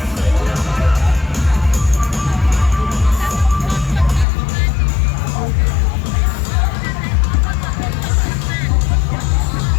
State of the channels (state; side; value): drops out; right; at 4.2 s